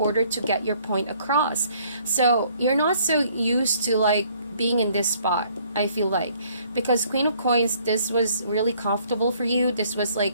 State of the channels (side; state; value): both; inverted; correlation -0.62